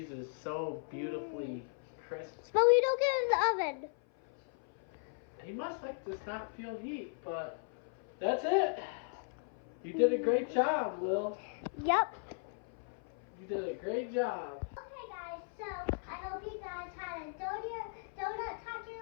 is so beautifully crisp. But we don't get it in the oven. He must just not feel heat, but that's it. You did a great job, Will. Yep. You did a great job. Okay, guys, so I hope you guys had a donut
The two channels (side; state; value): right; silent; 53 dB below the other